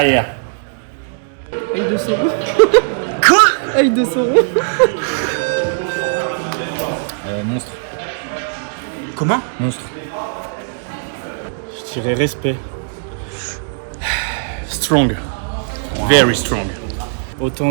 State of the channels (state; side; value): silent; left; digital silence